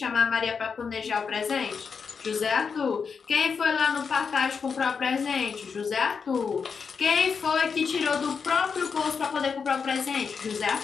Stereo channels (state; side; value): quieter; right; 5.8 dB